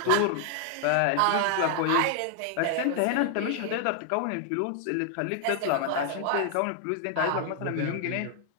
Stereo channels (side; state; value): both; different; correlation 0.00